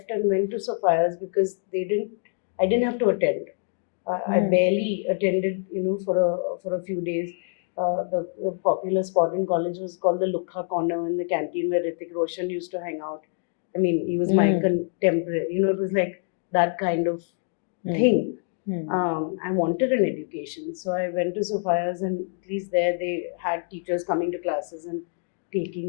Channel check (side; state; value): right; silent; digital silence